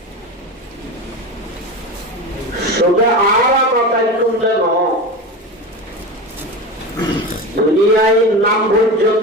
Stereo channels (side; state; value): both; normal; correlation 0.25